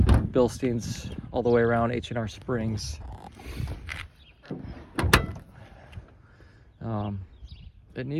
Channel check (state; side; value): identical; both; correlation 1.00